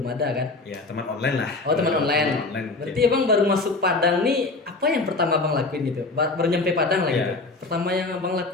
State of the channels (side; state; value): right; quieter; 3.4 dB